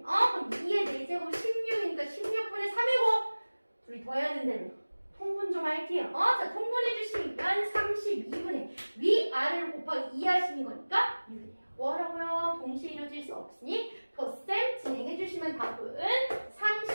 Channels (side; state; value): both; inverted; correlation -1.00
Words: 그럼 2의 4제곱 16이니까 16분의 3이고 둘이 더해야 된다며. 통분 좀 할게요. 자, 통분해 주시면 32분의 위아래를 곱하기 2 하시는 거니까 6이에요. 뭐라고요? 동시에 이루어질 수 없으니 덧셈 진행해 주시면 답은